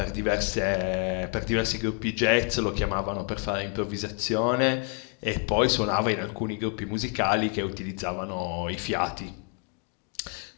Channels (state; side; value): quieter; right; 39.0 dB